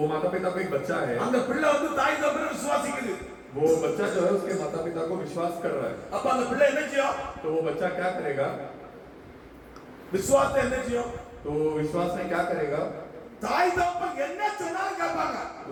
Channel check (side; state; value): both; identical; correlation 1.00